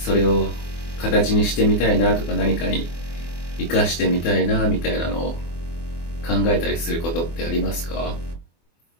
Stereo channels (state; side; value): late; right; 24 ms